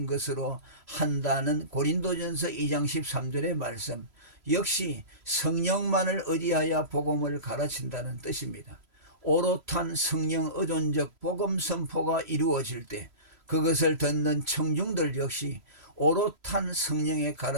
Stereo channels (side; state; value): left; late; 3.0 ms